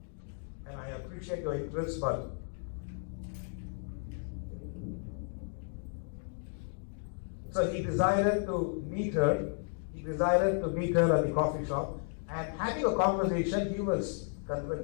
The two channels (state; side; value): silent; right; 55 dB below the other